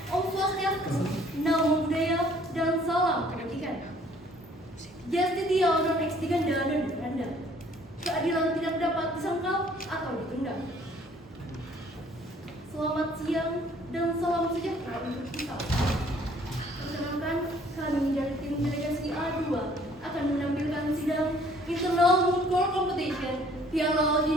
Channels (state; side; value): normal; both; correlation 0.58